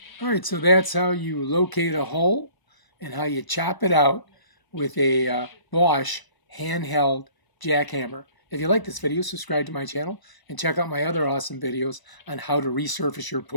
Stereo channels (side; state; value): right; late; 1.0 ms